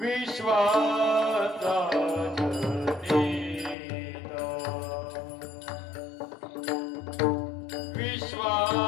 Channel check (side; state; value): right; drops out; at 3.8 s